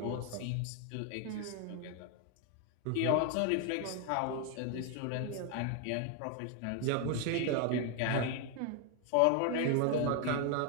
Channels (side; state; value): both; different; correlation 0.01